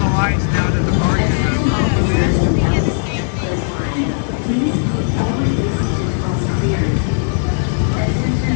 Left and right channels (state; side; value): silent; right; digital silence